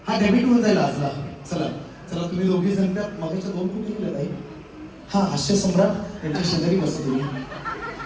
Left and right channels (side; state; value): both; identical; correlation 1.00